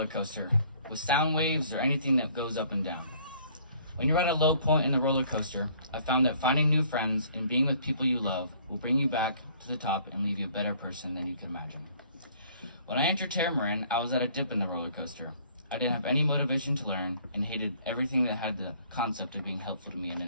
coaster, with sound waves or anything that goes up and down. When you're at a low point in the roller coaster, I found that finding new friends and being with people you love will bring you back to the top and leave you a better person than you can imagine. When I entered Tamarind, I was at a dip in the roller coaster. I didn't have any motivation to learn and hated everything that had the concept of being helpful to me in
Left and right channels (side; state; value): both; inverted; correlation -0.58